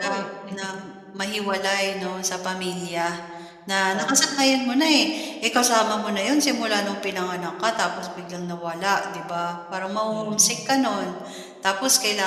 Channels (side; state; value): both; identical; correlation 1.00